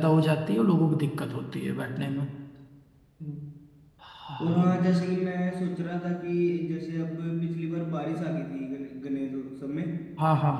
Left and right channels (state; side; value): identical; both; correlation 1.00